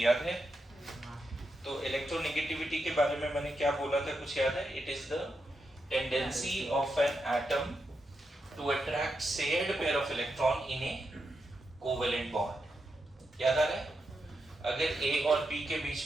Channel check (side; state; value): both; normal; correlation 0.85